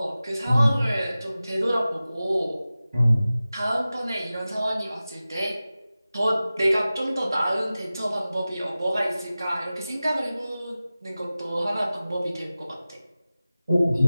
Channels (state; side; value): inverted; both; correlation -0.96